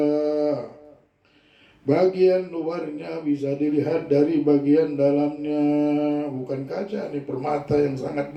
Bagian luarnya bisa dilihat dari bagian dalamnya. Bukan kaca, ini permata yang sangat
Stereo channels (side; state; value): both; identical; correlation 1.00